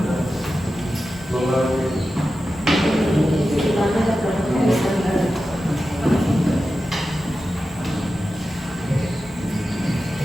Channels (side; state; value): both; normal; correlation 0.92